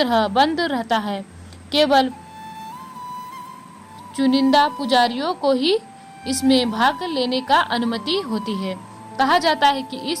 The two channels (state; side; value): identical; both; correlation 1.00